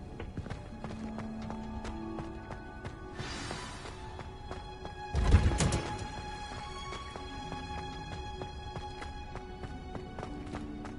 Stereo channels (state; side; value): identical; both; correlation 1.00